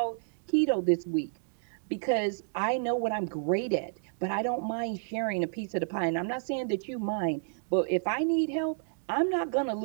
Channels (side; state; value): left; silent; digital silence